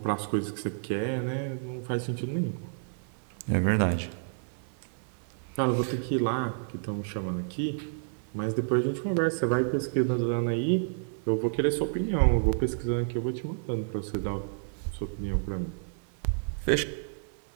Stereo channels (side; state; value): left; silent; 58 dB below the other